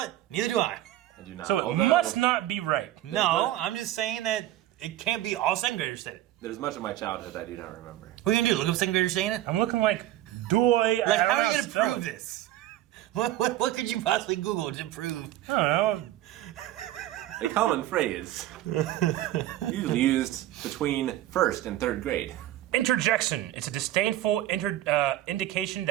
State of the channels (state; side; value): quieter; left; 14.2 dB